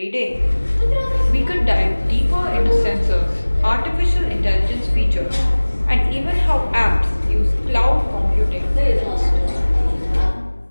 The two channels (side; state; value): both; inverted; correlation -1.00